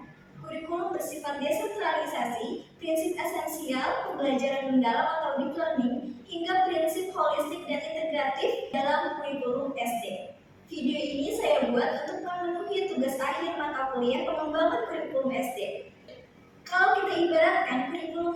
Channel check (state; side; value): identical; both; correlation 1.00